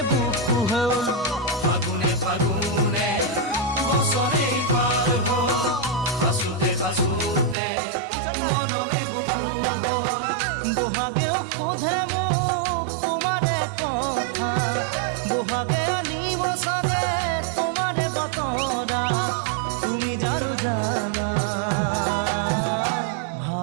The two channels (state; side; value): drops out; left; at 7.6 s